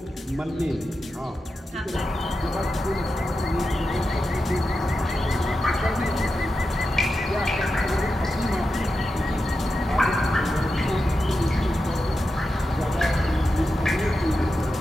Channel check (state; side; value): normal; both; correlation 0.90